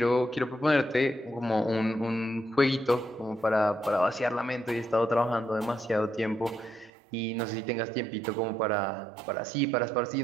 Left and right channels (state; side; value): drops out; left; at 6.9 s